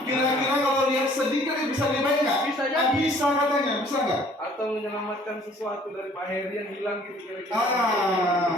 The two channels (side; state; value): both; normal; correlation 0.56